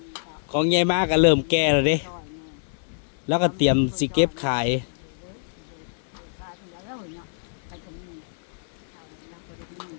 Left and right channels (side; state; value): right; silent; 57 dB below the other